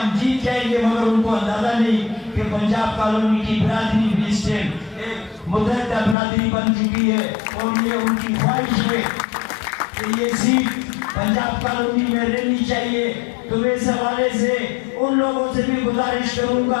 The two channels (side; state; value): right; drops out; at 6.2 s